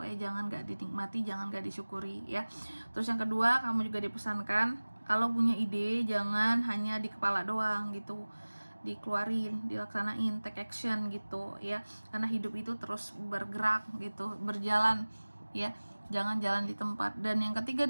ya. Jangan gak dinikmati, jangan gak disyukuri ya. Terus yang kedua, kamu juga dipesankan kalau punya ide jangan hanya di kepala doang gitu, dikeluarin, dilaksanain, take action gitu ya. Karena hidup itu terus bergerak gitu, berjalan ya. Jangan jalan di tempat. Dan yang ketiga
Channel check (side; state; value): both; inverted; correlation -1.00